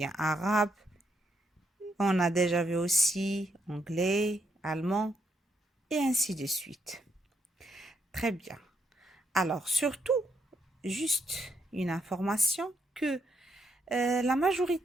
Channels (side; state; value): both; normal; correlation 0.77